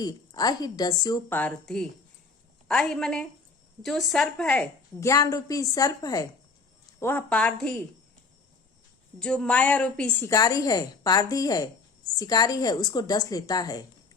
अहि डस्यो पारधि, अहि मने जो सर्प है, ज्ञान रूपी सर्प है, वह पारधि जो माया रूपी शिकारी है, पारधी है, शिकारी है, उसको डस लेता है।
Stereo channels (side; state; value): right; quieter; 4.4 dB